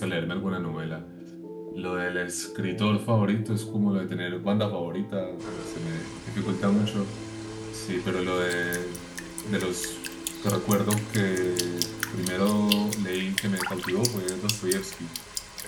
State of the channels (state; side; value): identical; both; correlation 1.00